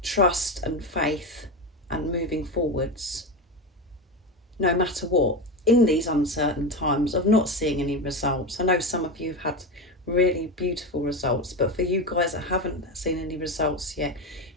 trust and faith and moving forwards. No matter what, in these uncertain times of not seeing any results. I know some of you have had really beautiful results. But for you guys that haven't seen any results yet,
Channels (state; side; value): normal; both; correlation 0.18